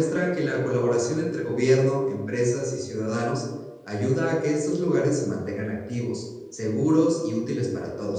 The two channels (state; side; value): identical; both; correlation 1.00